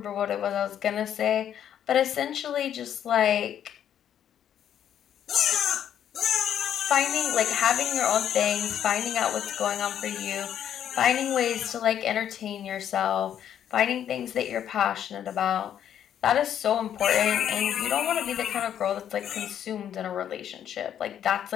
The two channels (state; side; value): quieter; right; 9.8 dB